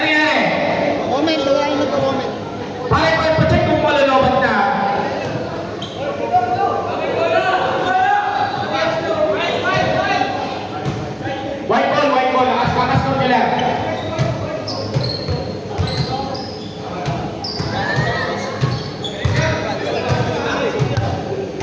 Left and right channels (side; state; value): both; identical; correlation 1.00